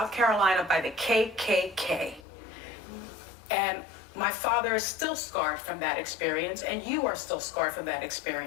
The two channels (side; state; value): right; drops out; at 2.2 s